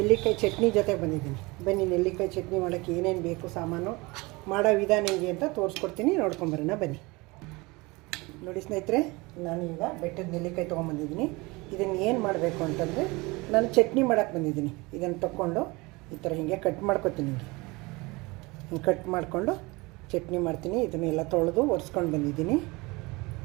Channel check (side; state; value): left; quieter; 24.2 dB